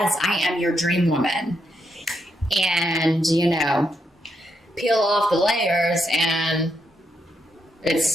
I am your dream woman. And, peel off the layers and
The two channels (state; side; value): normal; both; correlation 0.80